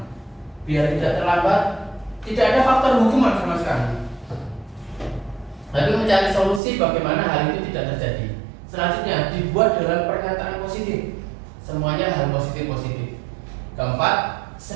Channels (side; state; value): left; drops out; at 6.6 s